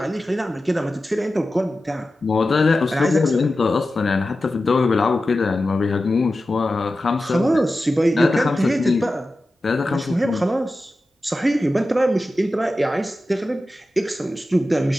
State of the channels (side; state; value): both; normal; correlation 0.93